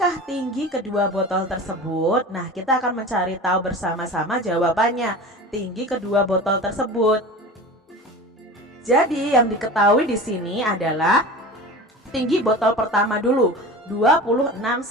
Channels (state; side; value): normal; both; correlation 0.33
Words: tinggi kedua botol tersebut? Nah, kita akan mencari tahu bersama-sama jawabannya. Tinggi kedua botol tersebut. Jadi, yang diketahui di sini adalah tinggi botol pertama dulu, 26